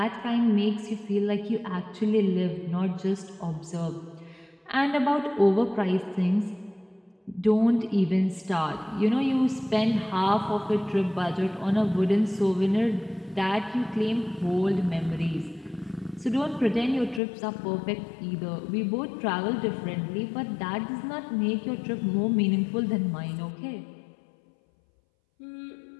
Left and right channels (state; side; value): drops out; right; at 17.2 s